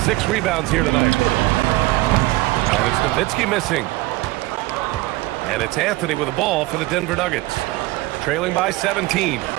6 rebounds here tonight. And it's Nowitzki missing. And it's Anthony with the ball for the Denver Nuggets. Trailing by 17.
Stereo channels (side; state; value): left; quieter; 19.6 dB